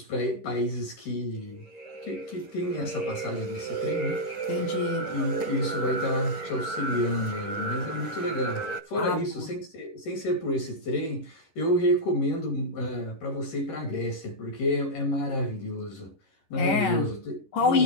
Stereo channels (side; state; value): right; late; 10 ms